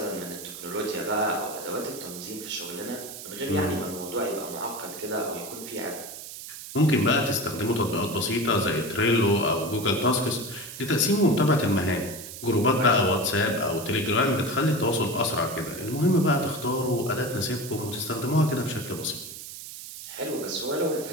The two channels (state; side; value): noise; right; hiss, 11 dB below the sound